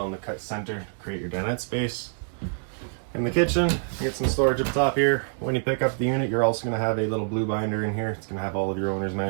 in the cut center, create your dinette space. In the kitchen, you get some storage up top here. When you pick up the unit, you're also going to have a little blue binder in here. It's going to have all of your owner's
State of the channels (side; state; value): left; silent; digital silence